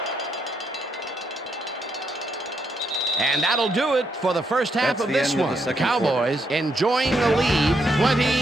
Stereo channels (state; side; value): normal; both; correlation 0.77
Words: And that'll do it for the first half of this one. The Cowboys enjoying the lead